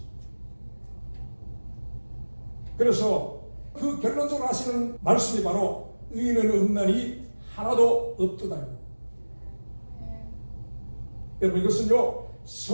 그래서 그 결론적으로 하시는 말씀이 바로 의인은 없나니 하나도 없도다. 여러분, 이것은요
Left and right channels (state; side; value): inverted; both; correlation -1.00